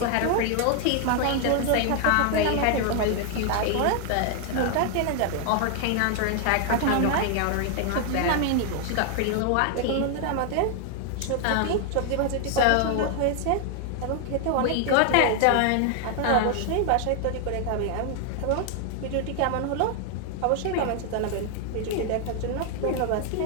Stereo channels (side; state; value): both; different; correlation 0.00